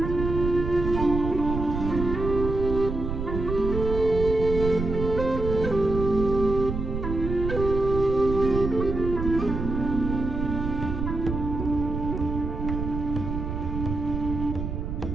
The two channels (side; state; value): right; noise; rumble, 4 dB below the sound